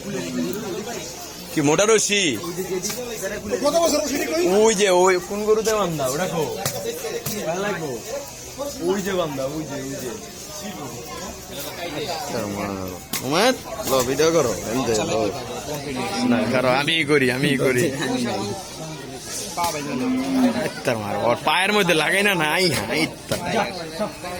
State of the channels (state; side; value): identical; both; correlation 1.00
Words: কি মোটা রশি ওই যে ওই ফোন করতে বান্ধা ওটা খো লাগবো ওই যে বান্ধা ওই যে ভিডিও করো না করো আমি করি ওর পায়ের মধ্যে লাগাই না নাই